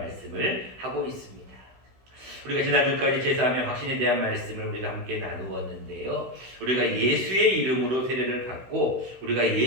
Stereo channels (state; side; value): late; left; 16 ms